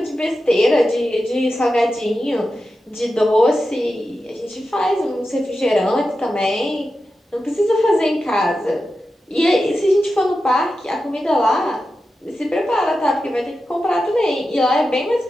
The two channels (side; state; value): both; normal; correlation 0.91